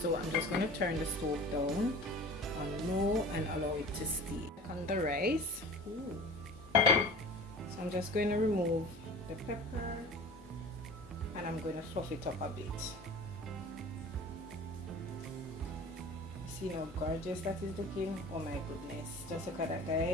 so I'm just going to turn the stove down on low and allow it to steam. On the rice. Ooh. So I'm just going to remove the pepper and I'm going to fluff it up a bit. See how gorgeous that is looking? Oh my goodness, just look at that,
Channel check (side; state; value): both; normal; correlation 0.39